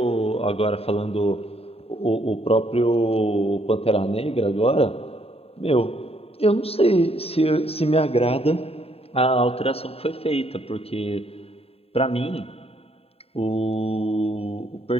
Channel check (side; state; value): right; late; 0.29 ms